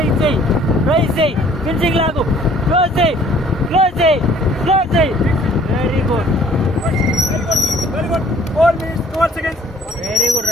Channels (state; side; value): normal; both; correlation 0.56